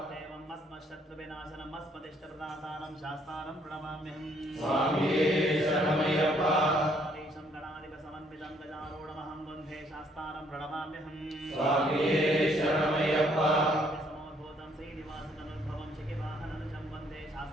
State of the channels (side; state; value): both; normal; correlation 0.66